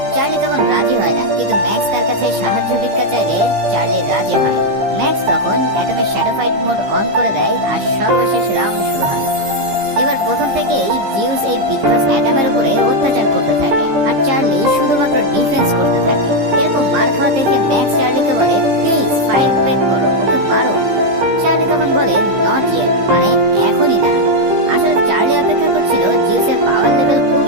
চার্লি তখন রাজি হয় না, কিন্তু ম্যাক্স তার কাছে সাহায্য ভিক্ষা চাইলে চার্লি রাজি হয়। ম্যাক্স তখন অ্যাটমের শ্যাডো ফাইট মোড অন করে দেয়, আর সর্বশেষ রাউন্ড শুরু হয়। এবার প্রথম থেকেই জিউস এই বিধ্বস্ত অ্যাটমের উপরে অত্যাচার করতে থাকে, আর চার্লি শুধুমাত্র ডিফেন্স করতে থাকে। এরকম মার খাওয়া দেখে ম্যাক্স চার্লিকে বলে প্লিজ ফাইট ব্যাক করো, ওকে মারো। চার্লি তখন বলে নট ইয়েট, মানে এখনই না। আসলে চার্লি অপেক্ষা করছিল জিউসের পাওয়ার লেভেল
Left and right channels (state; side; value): late; left; 15 ms